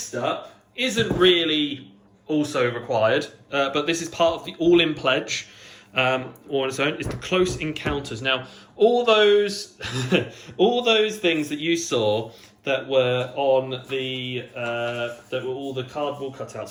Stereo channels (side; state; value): both; identical; correlation 1.00